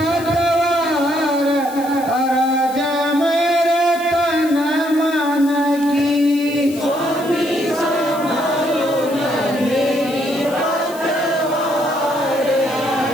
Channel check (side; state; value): left; noise; hiss, 17 dB below the sound